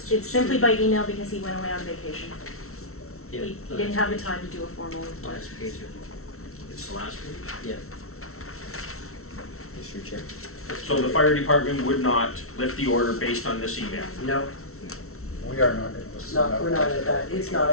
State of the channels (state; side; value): late; right; 0.63 ms